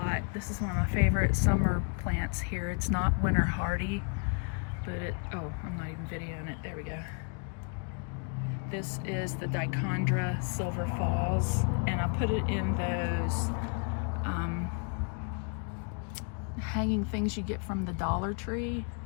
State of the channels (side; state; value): right; quieter; 39.0 dB